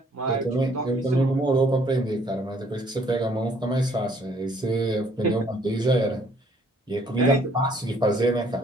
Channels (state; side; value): normal; both; correlation 0.63